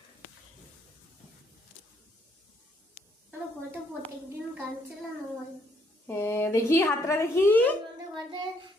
আমার ঘরে প্রত্যেকদিন গান চালানো হয়। হ্যাঁ দেখি হাতটা দেখি। আমাদের ঘরে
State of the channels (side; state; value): both; normal; correlation 0.70